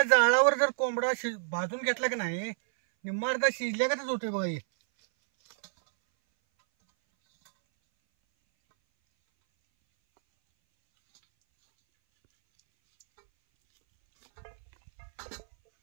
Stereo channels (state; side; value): silent; left; 59 dB below the other